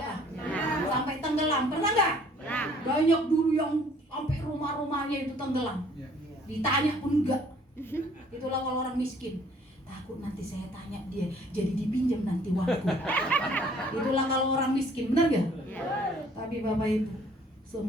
Sampai tenggelam, pernah nggak? Banyak dulu yang sampai rumah-rumahnya itu tenggelam. Ditanya pun enggak. Itulah kalau orang miskin. Takut nanti saya tanya dia, jadi dipinjam nanti waktu. Itulah kalau orang miskin, benar gak? Tapi Bapak Ibu,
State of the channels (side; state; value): both; normal; correlation 0.58